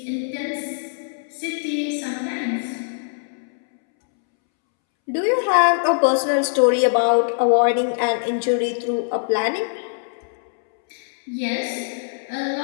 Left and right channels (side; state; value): right; silent; 64 dB below the other